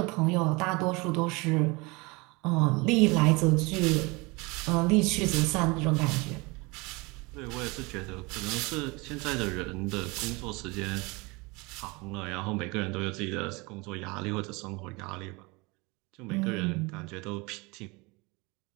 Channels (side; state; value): left; quieter; 26.0 dB